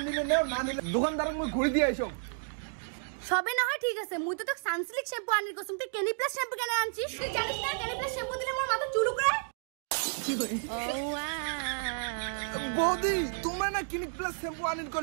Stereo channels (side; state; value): left; silent; digital silence